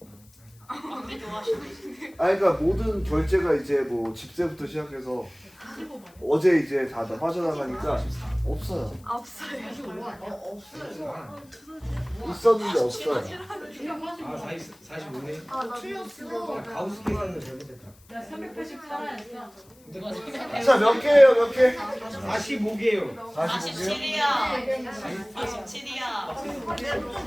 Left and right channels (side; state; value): left; noise; hiss, 28 dB below the sound